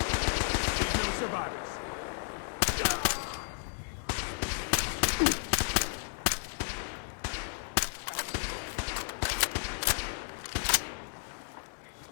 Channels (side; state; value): right; silent; digital silence